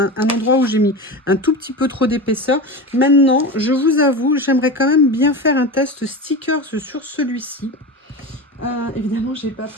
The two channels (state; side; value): normal; both; correlation 0.25